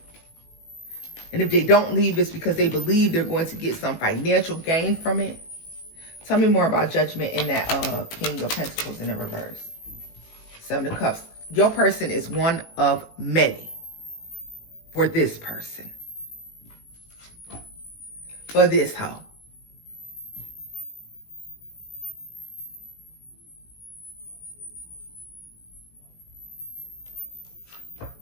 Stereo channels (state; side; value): late; right; 18 ms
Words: And if they don't leave, it's because they believe they're going to get some financial gain from it. Tell me more about Judgment in that King of Pentacles in the reverse. 7 of Cups. Your person is one of many for this person. For this hoe.